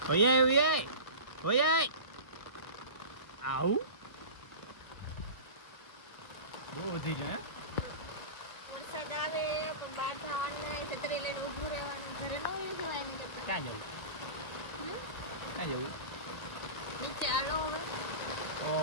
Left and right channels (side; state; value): right; late; 1.5 ms